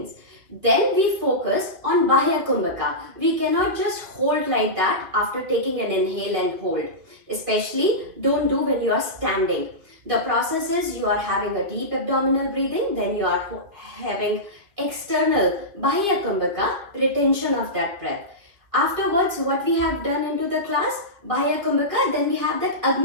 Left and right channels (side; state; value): left; late; 2.7 ms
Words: Then we focus on bahya kumbhaka. We cannot just hold like that after taking an inhale and hold. Especially don't do when you are standing. The process is you are having a deep abdominal breathing, then you are having external bahya kumbhaka, retention of that breath. Afterwards, what we have done into the class, bahya kumbhaka, then we have that